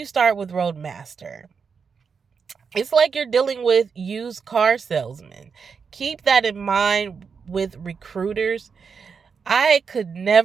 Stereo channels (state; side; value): quieter; left; 5.8 dB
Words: start with Roadmaster, it's like you're dealing with used car salesmen. Keep that in mind with recruiters. I could